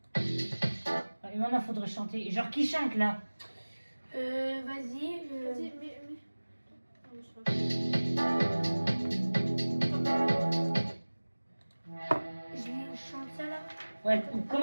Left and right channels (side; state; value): both; inverted; correlation -1.00